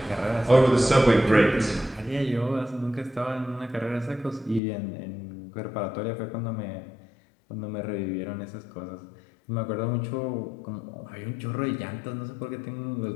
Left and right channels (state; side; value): drops out; right; at 4.6 s